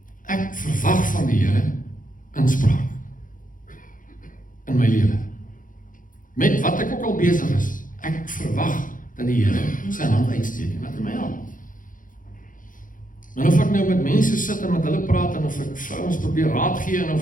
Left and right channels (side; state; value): right; late; 0.39 ms